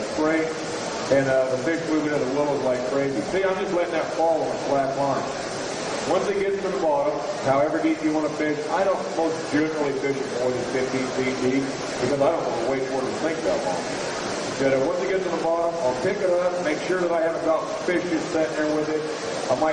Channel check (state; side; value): identical; both; correlation 1.00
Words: spring, and the fish moving into the willows like crazy. See, I'm just letting that fall on a flat line. Once it gets to the bottom, however deep you want to fish, I don't most generally fish it more than 15 feet deep because I don't want to wait for it to sink that long. But once it gets to the bottom, I'll pick it up, make sure that I haven't got fish just sitting there with it. I